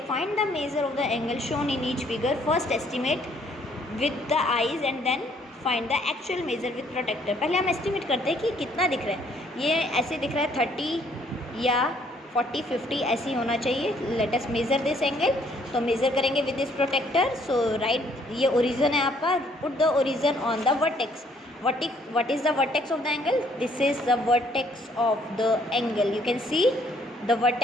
Find the measure of the angle shown in each figure. First estimate with the eyes and then find the actual measure with protractor. पहले हम estimate करते हैं कि कितना दिख रहा है. ये ऐसे दिख रहा है 30 या 40 50 ऐसे ही होना चाहिए. Let us measure this angle. तो मेजर करेंगे with this protractor. So right, ये ओरिजन है आपका. Put the origin on the vertex. what is the vertex of the angle? This is the vertex of the angle. You can see the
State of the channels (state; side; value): normal; both; correlation 0.64